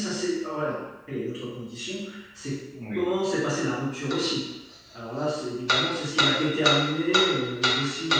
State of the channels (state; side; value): identical; both; correlation 1.00